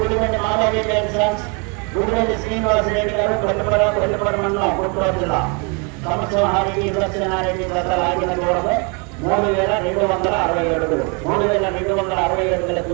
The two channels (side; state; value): left; quieter; 33.5 dB